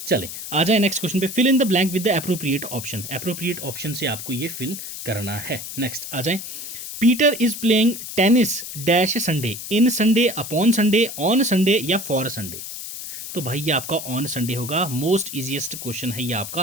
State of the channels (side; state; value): left; noise; hiss, 9 dB below the sound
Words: चले आ जाए नेक्स्ट क्वेश्चन पे। Fill in the blank with the appropriate option, appropriate option से आपको ये फिल करना है। नेक्स्ट आ जाए, Peter is playing tennis dash Sunday, in Sunday, upon Sunday, on Sunday या फॉर संडे। तो भाई ये आपका ऑन संडे होगा, मोस्ट इजीएस्ट क्वेश्चन है ये